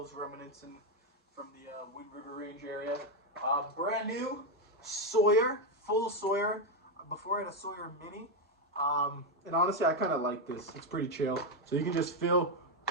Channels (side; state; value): both; normal; correlation 0.05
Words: remnants from the Wind River Range area. Brand new Sawyer, full Sawyer. Before I had a Sawyer Mini. And honestly, I kind of like this. It's pretty chill. So you can just fill